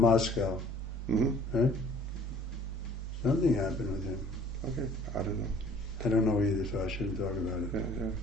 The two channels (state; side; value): normal; both; correlation 0.53